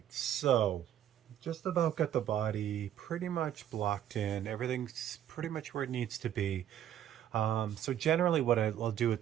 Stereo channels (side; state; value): left; quieter; 10.8 dB